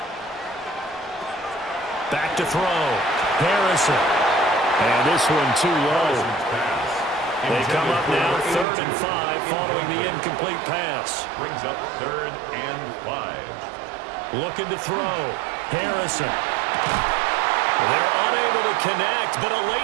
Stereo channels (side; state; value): left; drops out; at 8.7 s